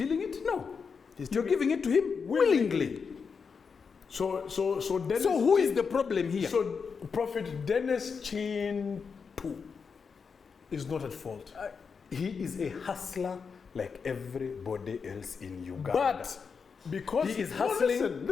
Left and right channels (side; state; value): right; quieter; 5.7 dB